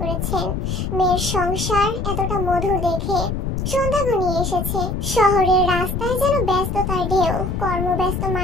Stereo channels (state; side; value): noise; left; rumble, 2 dB below the sound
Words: করেছেন মেয়ের সংসার এতটা মধুর দেখে। সন্ধ্যা ঘনিয়ে এসেছে। শহরের রাস্তায় যেন ব্যস্ততার ঢেউ। কর্মব্যস্ত